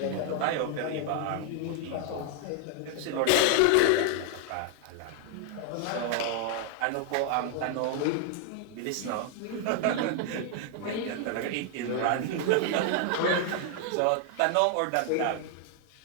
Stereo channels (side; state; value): both; different; correlation 0.00